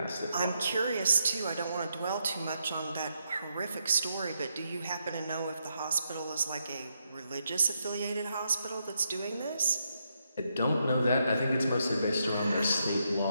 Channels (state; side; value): inverted; both; correlation -0.80